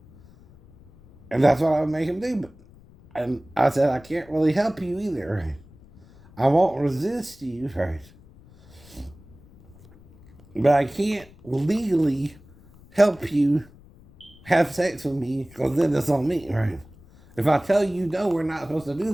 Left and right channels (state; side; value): noise; left; rumble, 24 dB below the sound